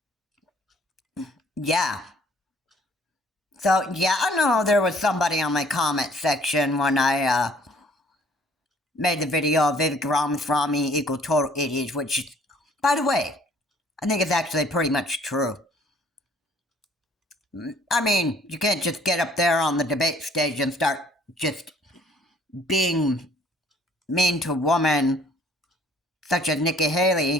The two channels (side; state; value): both; normal; correlation 0.58